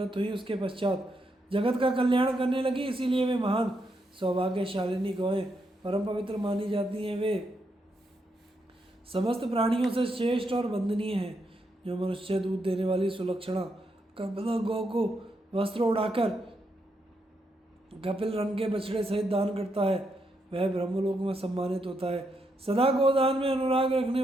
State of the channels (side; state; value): both; normal; correlation 0.80